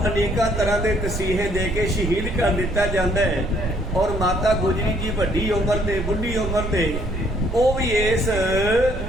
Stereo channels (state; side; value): noise; right; rumble, 5 dB below the sound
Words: ਅਨੇਕਾਂ ਤਰ੍ਹਾਂ ਦੇ ਤਸੀਹੇ ਦੇ ਕੇ ਸ਼ਹੀਦ ਕਰ ਦਿੱਤਾ ਜਾਂਦਾ ਹੈ। ਔਰ ਮਾਤਾ ਗੁਜਰੀ ਜੀ ਵੱਡੀ ਉਮਰ ਤੇ, ਬੁੱਢੀ ਉਮਰ ਤੇ, ਉਹ ਵੀ ਇਸ